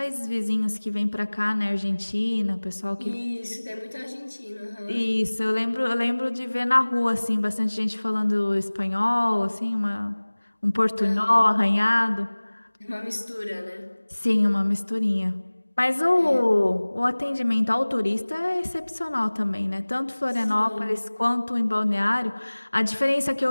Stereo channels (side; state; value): both; inverted; correlation -1.00